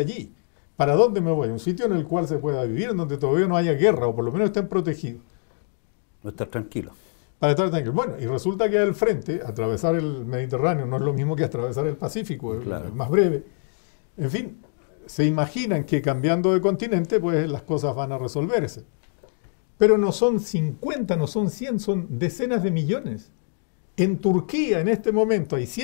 ¿Para dónde me voy? Un sitio en el cual se pueda vivir, en donde todavía no haya guerra, o por lo menos estén protegidos. No estar tranquilo. Para estar tranquilo. Bueno, y resulta que al frente, atravesar el Mediterráneo no es lo mismo que atravesar el Pacífico, claro, es más breve. En fin, se imaginan que cambiando de continente, pues las cosas van a resolverse. Pero no son 50, no son 100, son decenas de millones. En Turquía, en este momento, hay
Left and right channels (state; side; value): silent; right; digital silence